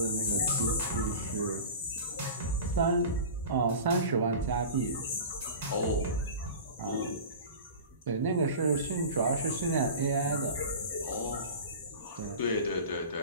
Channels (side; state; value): both; inverted; correlation -0.34